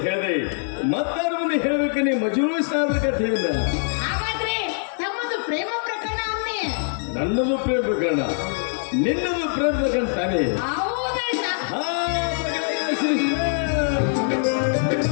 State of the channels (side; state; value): right; silent; digital silence